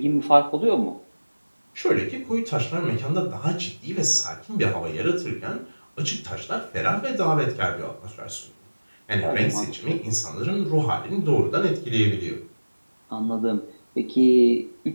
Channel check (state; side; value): inverted; both; correlation -1.00